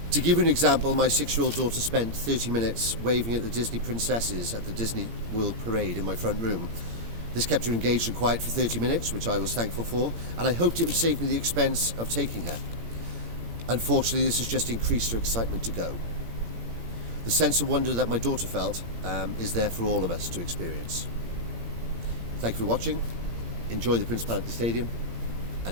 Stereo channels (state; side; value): late; left; 17 ms